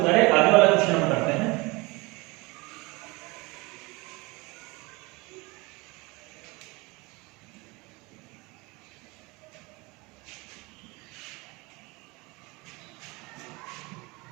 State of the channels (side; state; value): left; quieter; 25.0 dB